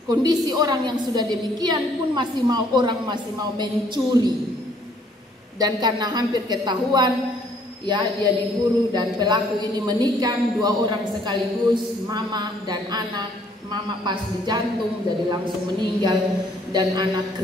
Kondisi orang yang sudah demikian pun masih mau mencuri. Dan karena hampir ketahuan, ya, dia diburu dan pelaku ini menikam 2 orang sekaligus, mama dan anak. Mama pas di jantung jadi langsung meninggal, dan anak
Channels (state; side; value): normal; both; correlation 0.63